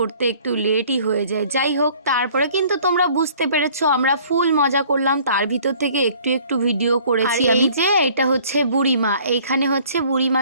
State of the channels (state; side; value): inverted; both; correlation -0.55